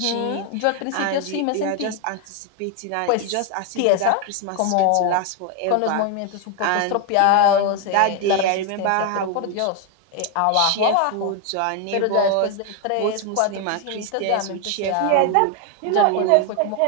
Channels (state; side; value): different; both; correlation 0.01